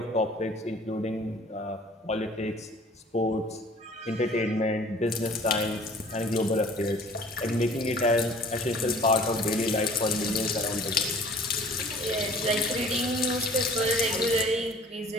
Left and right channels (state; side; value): normal; both; correlation 0.50